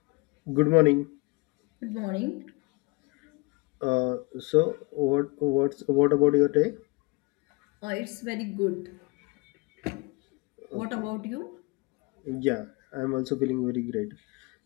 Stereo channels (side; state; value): right; quieter; 26.3 dB